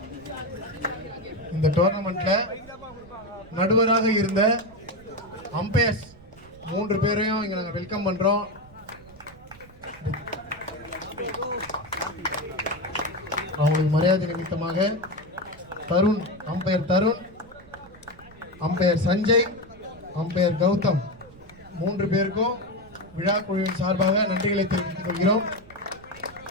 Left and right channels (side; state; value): right; noise; rumble, 22 dB below the sound